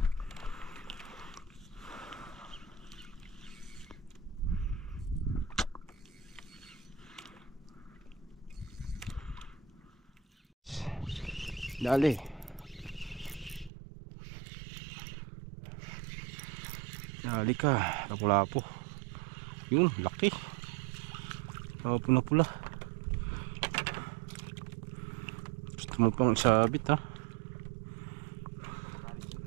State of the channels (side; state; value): left; drops out; at 13.7 s